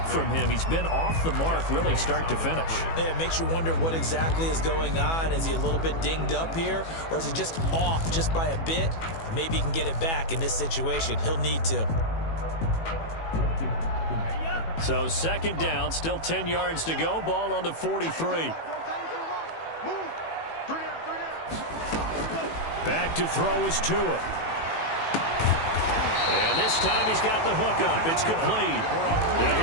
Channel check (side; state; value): right; late; 18 ms